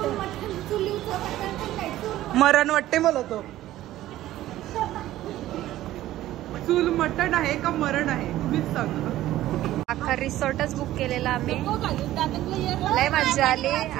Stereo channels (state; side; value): quieter; left; 14.5 dB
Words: मरण वाटते मला तो. चूल मटण आहे का मरण आहे तुम्हीच सांगा. अख्खा रिसॉर्टच बुक केलेला आम्ही. लय मजा आली.